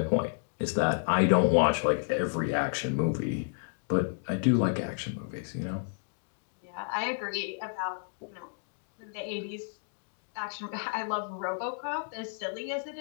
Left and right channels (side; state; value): right; silent; digital silence